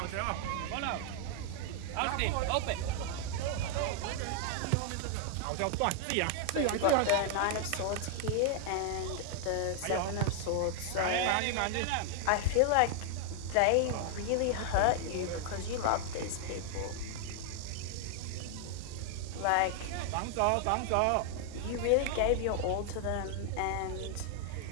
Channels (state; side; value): different; both; correlation 0.00